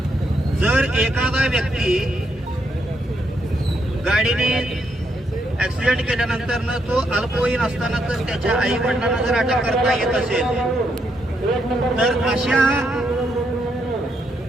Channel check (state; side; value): normal; both; correlation 0.77